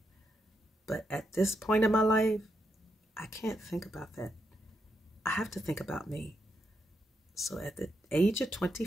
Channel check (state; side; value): normal; both; correlation 0.82